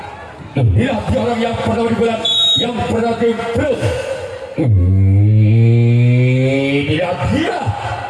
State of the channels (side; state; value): both; identical; correlation 1.00